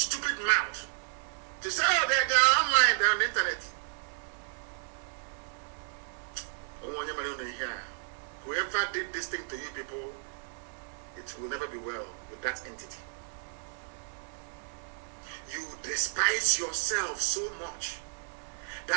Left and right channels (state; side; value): silent; left; digital silence